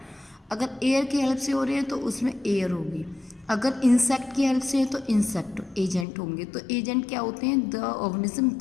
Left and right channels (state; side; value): drops out; right; at 6.1 s